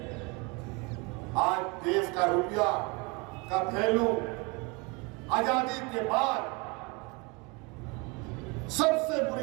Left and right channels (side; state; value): left; quieter; 27.4 dB